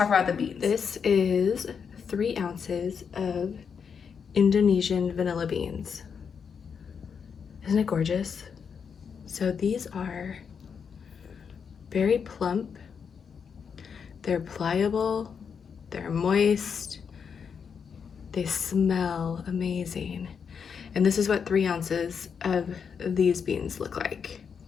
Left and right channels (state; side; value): quieter; right; 6.5 dB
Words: about the beans. This is 3 ounces of Indonesian vanilla beans. Isn't it gorgeous? So these are very plump, they're pliable, they're moist, they smell amazing. And this is what 3 ounces of these beans look like.